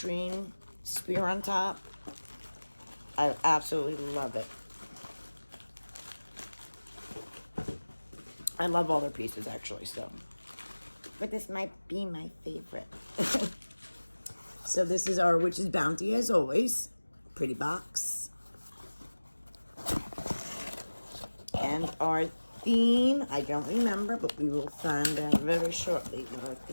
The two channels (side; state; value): both; inverted; correlation -1.00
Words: spear on top. I absolutely love it. I love all their pieces, actually, so. But this might be my favorite. So this is our Witch's Bounty, as always. Pretty box. And our theme, I don't remember, but we will find out very shortly what our